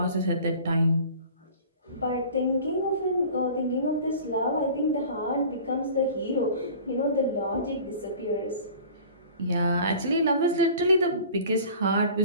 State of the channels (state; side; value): inverted; both; correlation -0.43